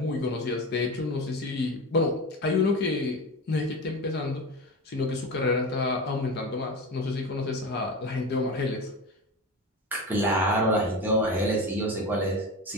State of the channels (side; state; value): both; normal; correlation 0.25